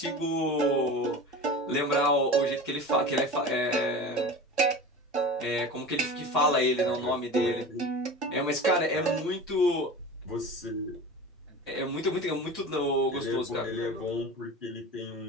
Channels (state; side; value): normal; both; correlation 0.33